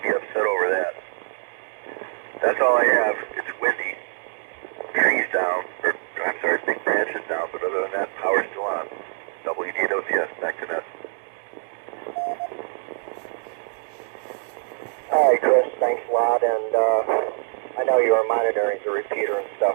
be upset over that. That's all I have. It's windy. Trees down. Or, I'm sorry, big branches down. But other than that, power's still on. WDOCS, back to net. All right, Chris, thanks a lot. And I know you are monitoring the repeater and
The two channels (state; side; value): silent; left; 62 dB below the other